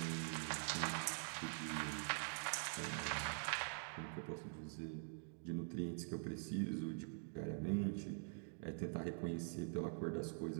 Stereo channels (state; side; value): silent; left; digital silence